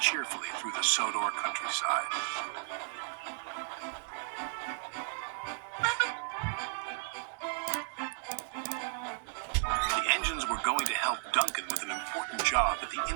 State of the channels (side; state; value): left; silent; 55 dB below the other